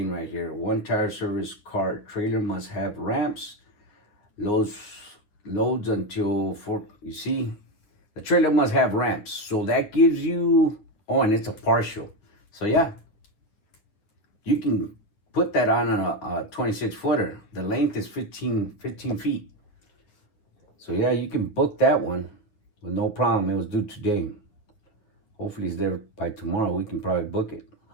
right here. One tire service car trailer must have ramps. Loads until 4. You see, the trailer must have ramps. So that gives you, oh, and it's a partial. So yeah, you can put that on a 26-footer. The length is 15 feet. So yeah, you can book that one with no problem. It was due today. Hopefully it's there by tomorrow. We can probably book it.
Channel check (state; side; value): late; right; 9.7 ms